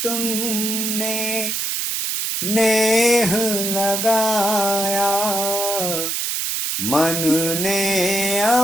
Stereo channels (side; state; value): right; noise; hiss, 1 dB below the sound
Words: तुमने नेह लगाया, मन ने